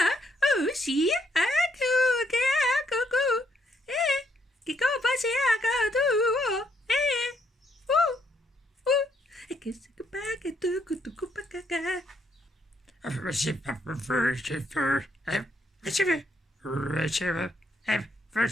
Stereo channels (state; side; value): normal; both; correlation 0.73